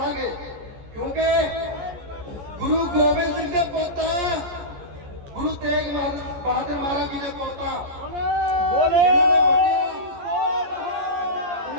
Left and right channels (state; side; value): late; left; 14 ms